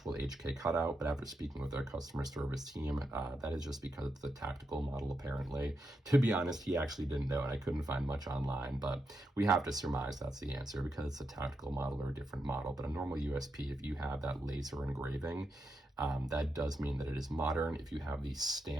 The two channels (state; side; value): normal; both; correlation 0.84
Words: HK cutout, but after speaking with our customer service team, that is just because it's the tactical model apparently. To be honest, he actually didn't know and I couldn't find much online, but we have to surmise that's the answer because it's a tactical model or a different model. But a normal USP, if you have that laser engraving, that does mean that it is modern. If you have the